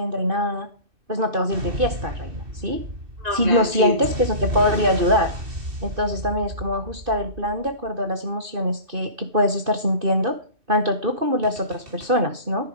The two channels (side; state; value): left; late; 2.6 ms